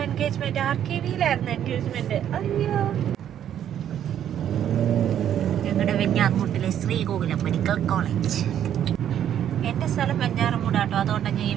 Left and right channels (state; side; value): quieter; left; 10.1 dB